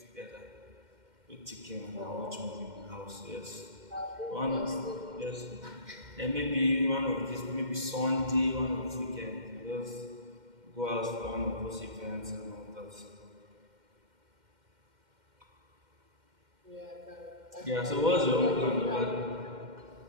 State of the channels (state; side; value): late; left; 2.1 ms